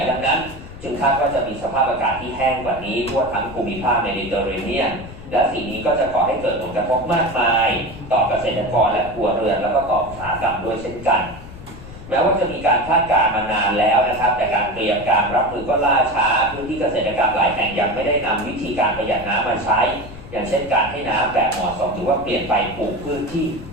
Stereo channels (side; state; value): left; noise; rumble, 15 dB below the sound